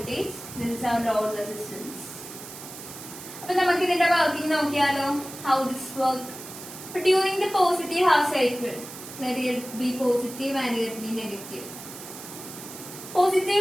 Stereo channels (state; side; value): noise; right; hiss, 13 dB below the sound